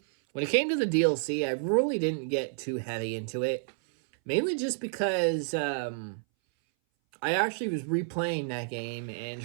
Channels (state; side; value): silent; left; 58 dB below the other